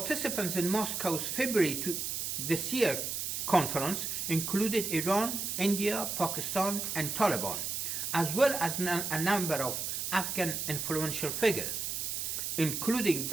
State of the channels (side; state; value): right; noise; hiss, 2 dB below the sound